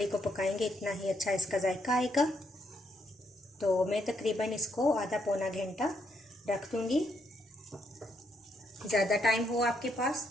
को पकाएंगे इतना ही अच्छा इसका जायका आएगा। तो मैं तकरीबन इसको आधा पौना घंटा रख दूंगी। ज़्यादा टाइम हो आपके पास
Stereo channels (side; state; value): both; normal; correlation 0.75